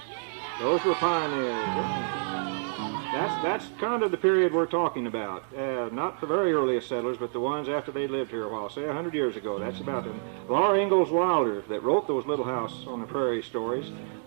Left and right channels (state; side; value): silent; left; digital silence